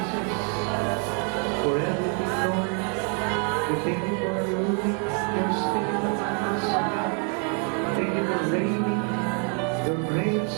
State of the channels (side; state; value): left; quieter; 39.5 dB